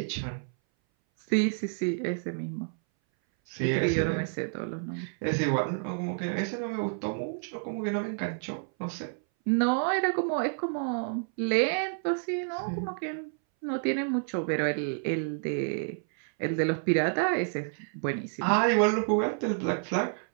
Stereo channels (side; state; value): left; silent; 58 dB below the other